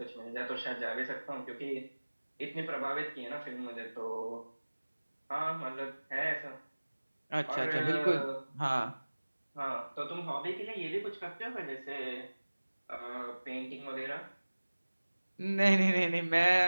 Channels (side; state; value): both; inverted; correlation -1.00